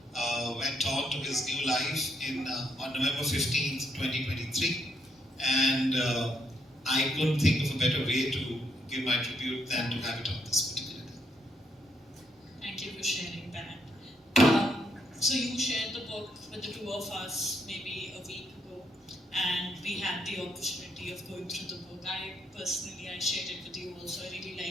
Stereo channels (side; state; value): both; normal; correlation 0.75